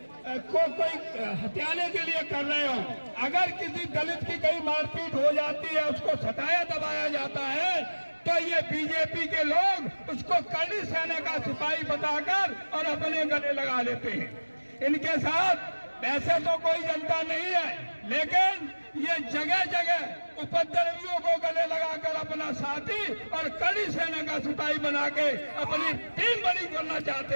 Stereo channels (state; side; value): inverted; both; correlation -1.00